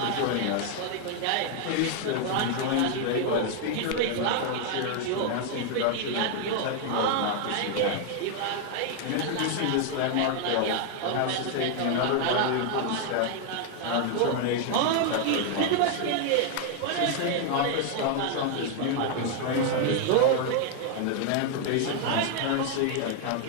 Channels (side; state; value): both; different; correlation 0.00